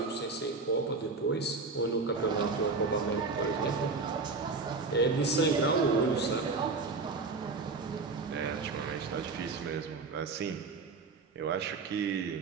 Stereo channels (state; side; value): quieter; left; 4.1 dB